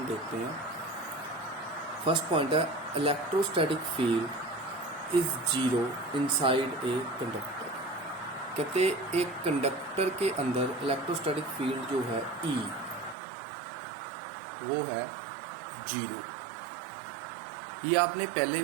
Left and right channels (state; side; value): drops out; left; at 13.2 s